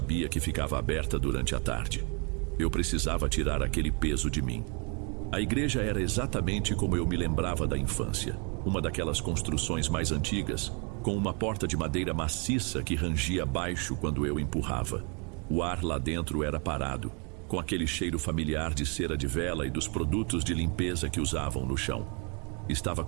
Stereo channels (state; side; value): quieter; left; 35.3 dB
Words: que ficava aberta durante a tarde. Eu precisava tirar aquele peso de mim. A igreja era exatamente como eu me lembrava da infância. Uma daquelas construções mais antigas, com uma porta de madeira maciça que rangia baixo quando eu empurrava. O ar lá dentro era parado, com aquele cheiro familiar de cera de vela e dos produtos de limpeza que usavam no chão. Estava